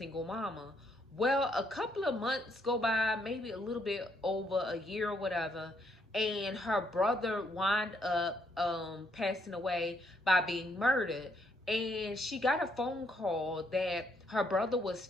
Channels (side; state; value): both; normal; correlation 0.73